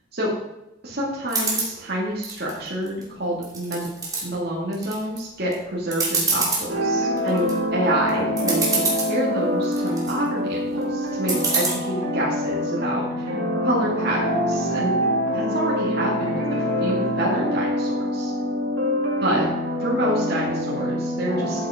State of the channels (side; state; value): both; normal; correlation 0.19